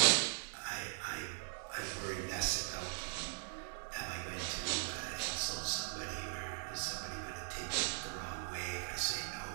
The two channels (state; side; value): silent; left; 51 dB below the other